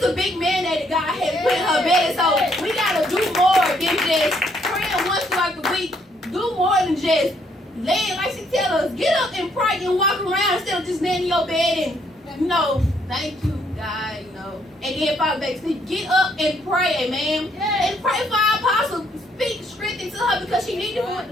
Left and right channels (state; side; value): normal; both; correlation 0.70